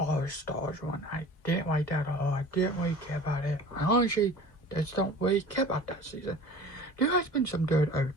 Stars one. I didn't like that at all. I didn't really care about it. I honestly just don't really care about that season. There has been some good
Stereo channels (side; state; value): right; late; 1.5 ms